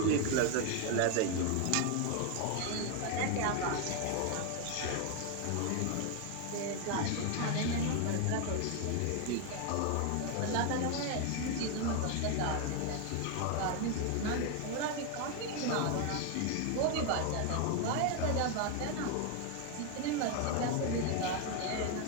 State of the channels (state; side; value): different; both; correlation 0.01